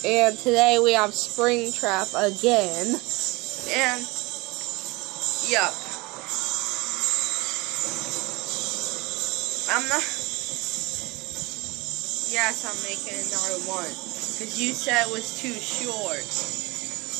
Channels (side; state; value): left; quieter; 24.0 dB